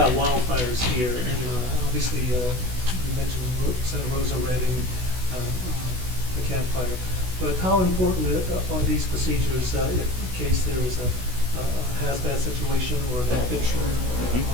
wildfires here, and obviously you mentioned Santa Rosa, Redding, the campfire. But how important are these procedures in case there is a hazmat situation or an active shooter,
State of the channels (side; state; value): left; late; 16 ms